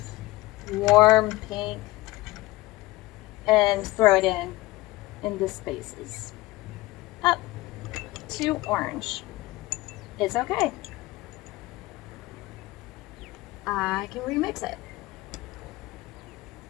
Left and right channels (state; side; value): quieter; right; 19.2 dB